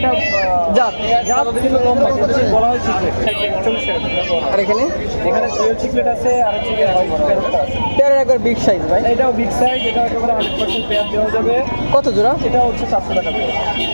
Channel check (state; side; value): inverted; both; correlation -1.00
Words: জাত কিন্তু লম্বা, বলা হয় চিকলেট। 40 টাকা জোড়া। আর এখানে ডুয়েল চিকলেট আছে, আর হচ্ছে গিয়ে প্যারটটা আছে। পেয়ারের একবার বিগ সাইজ ভাই। এটাও বিগ সাইজ, এটা একেবারে 100% পেয়ার দেওয়া যাবে। কত জোড়া? এটা হচ্ছে 700 টাকা জোড়া।